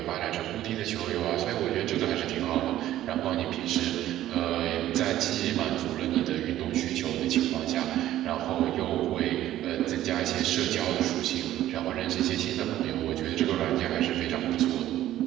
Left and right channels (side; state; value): left; quieter; 13.4 dB